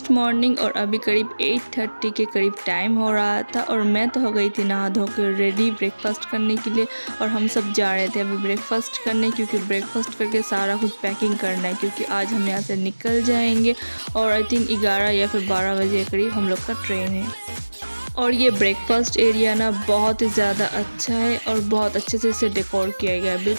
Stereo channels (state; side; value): inverted; both; correlation -1.00